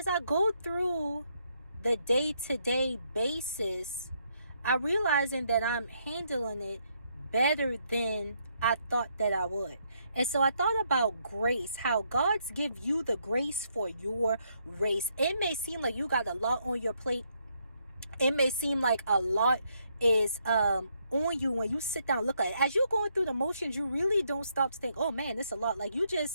I go through the day-to-day basis, I realizing that I'm handling it better than I thought that I would. And so I thought about grace, how God's give you the grace for your race. It may seem like you got a lot on your plate. It may seem like a lot is on you when you sit down and look at it. As you're going through the motions, you really don't stop to think, oh man, it's a lot. Like you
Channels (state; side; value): inverted; both; correlation -0.75